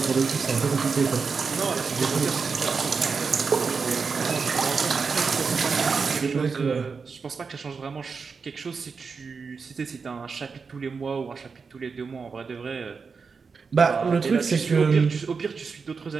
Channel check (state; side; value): quieter; left; 5.2 dB